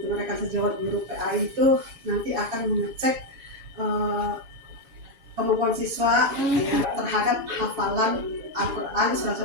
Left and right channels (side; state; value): left; late; 6.1 ms